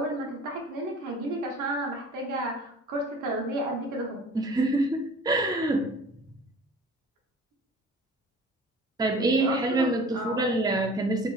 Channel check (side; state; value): both; normal; correlation 0.45